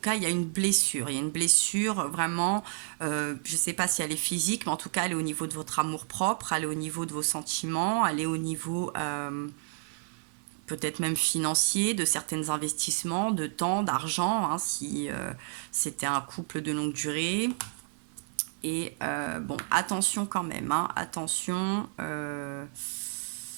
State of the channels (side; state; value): left; silent; 57 dB below the other